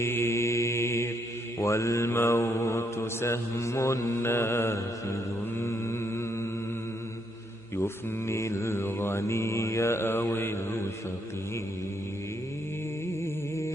والموت سهم نافذ يفني الغني أو الفقير.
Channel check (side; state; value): both; normal; correlation 0.75